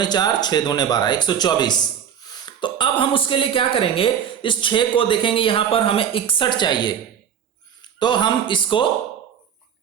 4, 6 दूने 12, 124। तो अब हम उसके लिए क्या करेंगे, इस 6 को देखेंगे, यहां पर हमें 61 चाहिए, तो हम इसको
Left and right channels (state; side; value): quieter; left; 8.5 dB